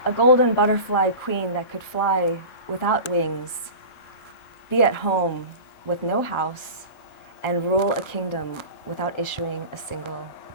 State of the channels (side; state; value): right; late; 3.5 ms